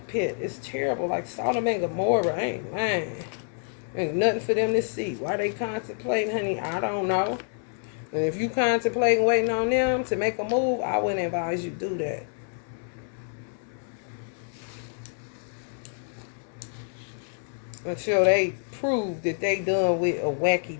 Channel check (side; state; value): right; silent; digital silence